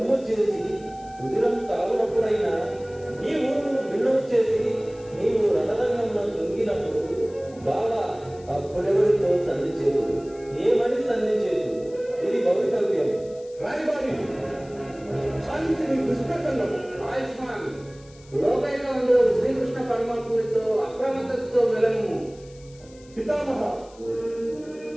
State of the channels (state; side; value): noise; left; hiss, 26 dB below the sound